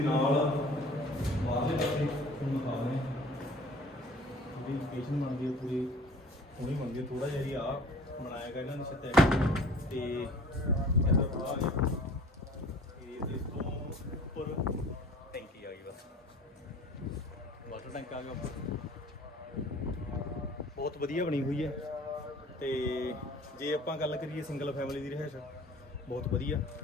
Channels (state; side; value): normal; both; correlation 0.47